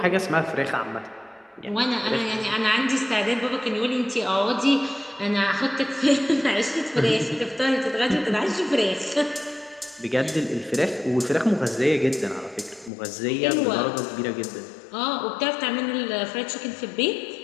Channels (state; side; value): drops out; right; at 12.9 s